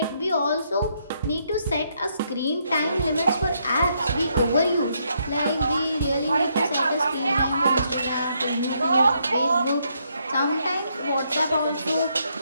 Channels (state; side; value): inverted; both; correlation -0.75